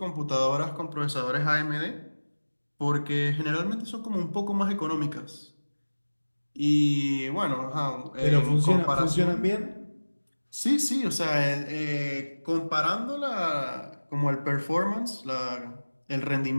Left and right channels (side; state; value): both; inverted; correlation -1.00